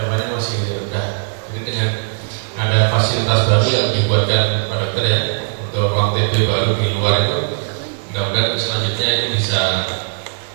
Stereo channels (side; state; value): left; silent; 67 dB below the other